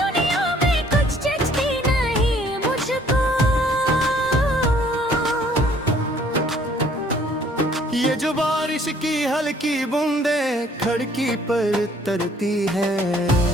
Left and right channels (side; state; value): both; normal; correlation 0.60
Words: दुनिया में कुछ जचती नहीं मुझको। ये जो बारिश की हल्की बूंदे खिड़की पर तरती है